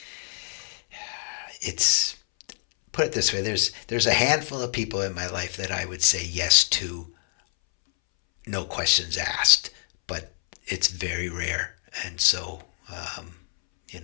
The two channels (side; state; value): right; silent; 61 dB below the other